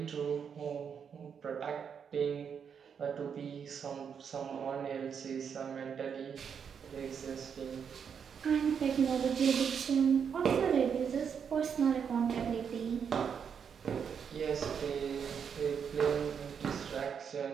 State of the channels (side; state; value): left; quieter; 7.1 dB